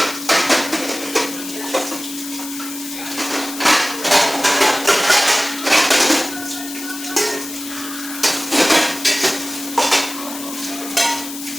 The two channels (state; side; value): noise; left; hiss, 10 dB below the sound